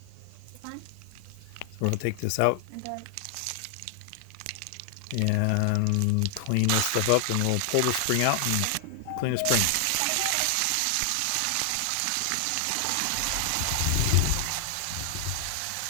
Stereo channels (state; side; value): different; both; correlation 0.00